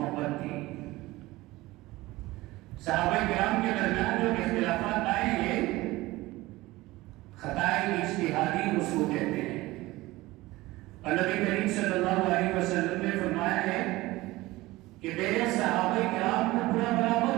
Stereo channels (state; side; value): quieter; left; 19.2 dB